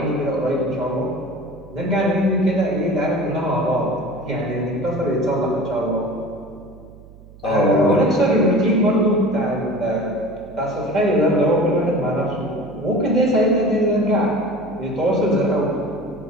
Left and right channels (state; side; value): noise; right; hum, 21 dB below the sound